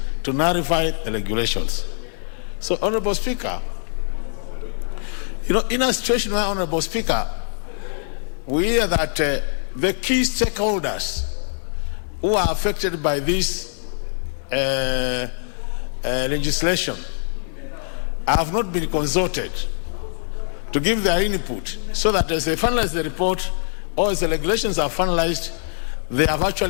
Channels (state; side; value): silent; right; digital silence